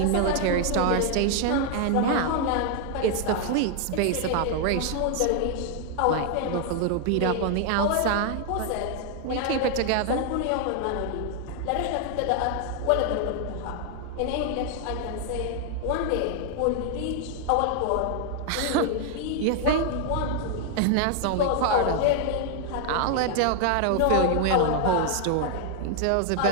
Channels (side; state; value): both; different; correlation 0.00